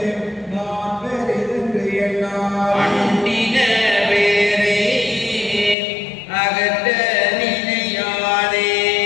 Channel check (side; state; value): right; drops out; at 5.8 s